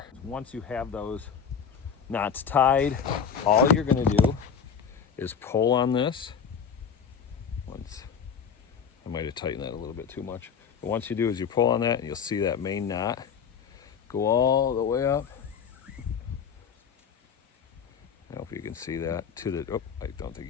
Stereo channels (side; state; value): right; quieter; 7.1 dB